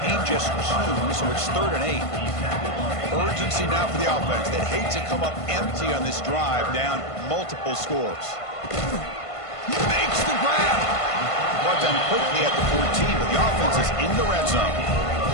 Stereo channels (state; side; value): late; right; 1.5 ms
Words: Ain't just 2, so it's 3rd and 8. Urgency now for the offense. They'd hate to come up empty on this drive, down multiple scores. He makes the grab. Brought down quickly at the 14, but the offense is in the red zone.